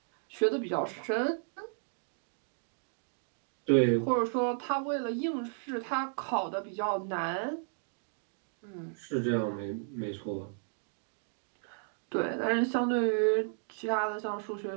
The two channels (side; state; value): left; silent; digital silence